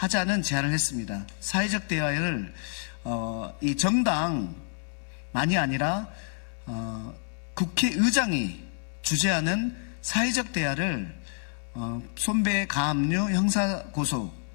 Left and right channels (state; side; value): silent; right; 59 dB below the other